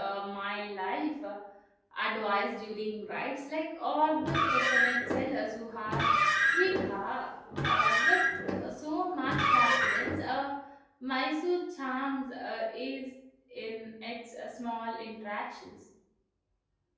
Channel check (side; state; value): both; identical; correlation 1.00